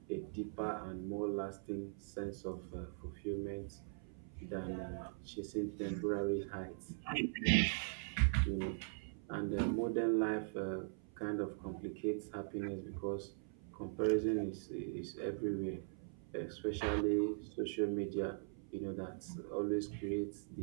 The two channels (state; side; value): silent; left; 50 dB below the other